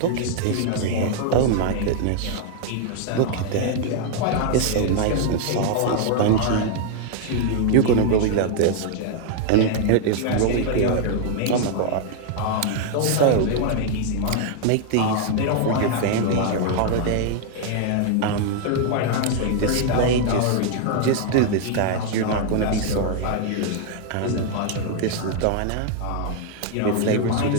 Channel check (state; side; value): different; both; correlation 0.00